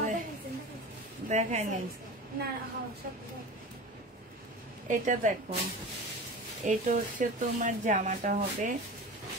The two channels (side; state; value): both; normal; correlation 0.32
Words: দেখাই নেই। না সব এটা দেখো, এটা হচ্ছে তোমার জামাটা হবে,